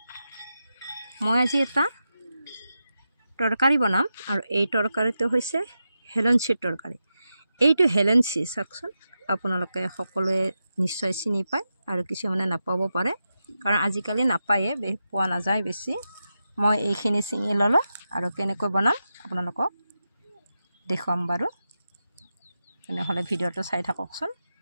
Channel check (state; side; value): inverted; both; correlation -0.90